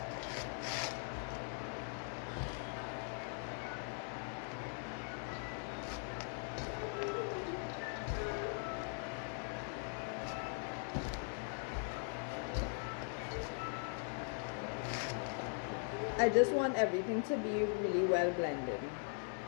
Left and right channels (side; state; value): right; silent; 51 dB below the other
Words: I just want everything to be really well blended.